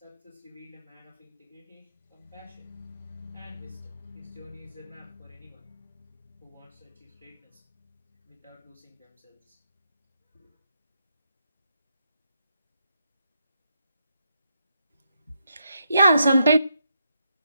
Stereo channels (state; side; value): inverted; both; correlation -0.80